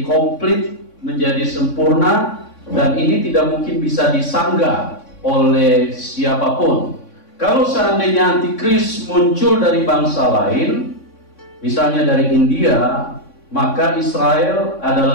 komplit, menjadi sempurna, dan ini tidak mungkin bisa disanggah oleh siapapun. Kalau seandainya antikris muncul dari bangsa lain, misalnya dari India, maka Israel adalah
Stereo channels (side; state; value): right; late; 3.6 ms